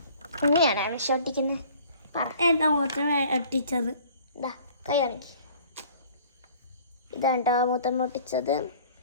ഇങ്ങനെയാണ് വിഷൊട്ടിക്കുന്നത്. എന്താ മൂത്തം ഒട്ടിച്ചത്? ഇതാ കൈ കാണിക്ക്. ഇതാണ്ടോ മൂത്തം ഒട്ടിച്ചത്.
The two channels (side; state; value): both; inverted; correlation -0.51